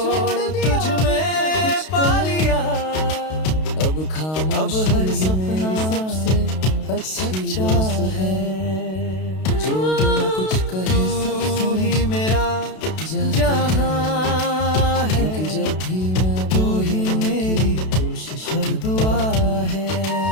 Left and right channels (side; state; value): right; late; 32 ms